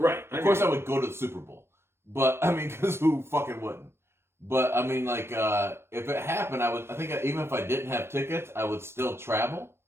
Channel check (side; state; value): left; late; 0.12 ms